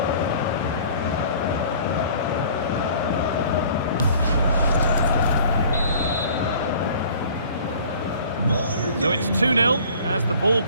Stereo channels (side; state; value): both; inverted; correlation -0.49